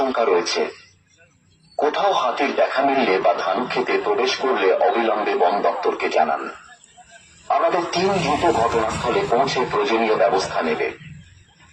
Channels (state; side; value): identical; both; correlation 1.00